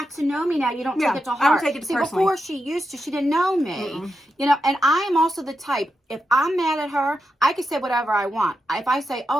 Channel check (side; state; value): both; normal; correlation 0.87